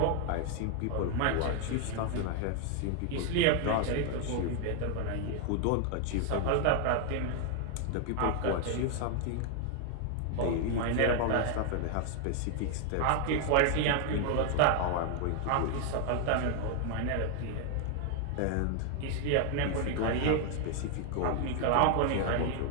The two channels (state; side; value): different; both; correlation 0.00